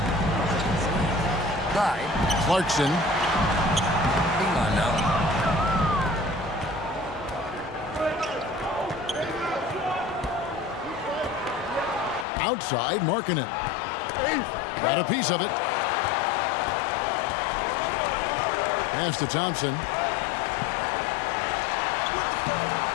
Clarkson. Hang on now. Outside, Markkanen. Got a piece of it. Pass to Thompson.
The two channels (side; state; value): right; drops out; at 12.2 s